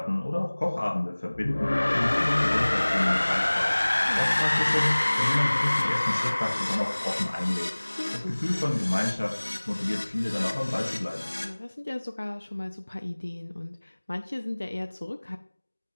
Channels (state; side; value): inverted; both; correlation -1.00